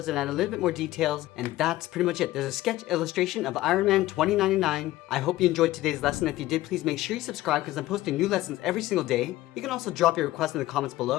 and add a little bit more details. And that's pretty much it. There's a sketch illustration of Ironman 2099. I hope you enjoyed today's lesson. If you did, please make sure you subscribe because I'm posting new lessons every single day. You can also drop your request in the comments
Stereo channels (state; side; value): quieter; right; 16.5 dB